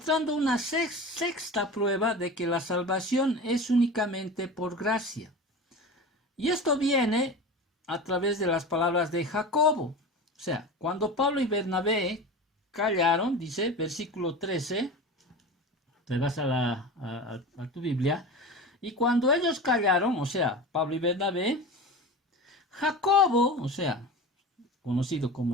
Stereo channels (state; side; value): normal; both; correlation 0.31